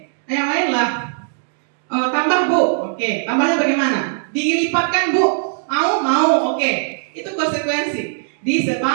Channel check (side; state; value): left; silent; digital silence